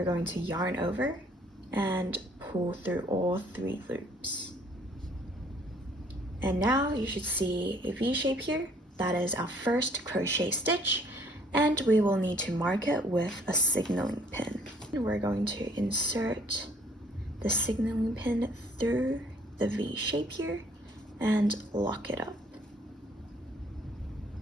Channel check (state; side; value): normal; both; correlation 0.61